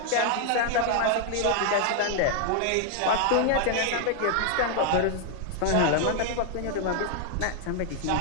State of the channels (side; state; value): both; different; correlation 0.00